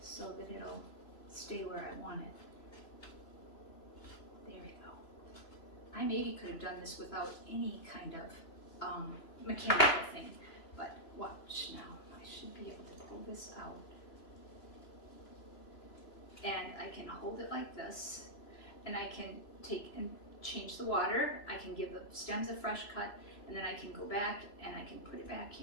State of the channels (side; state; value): right; late; 3.0 ms